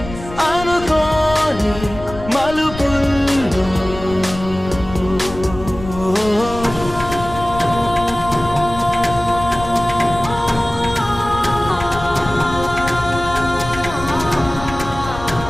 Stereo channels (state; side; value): noise; left; rumble, 11 dB below the sound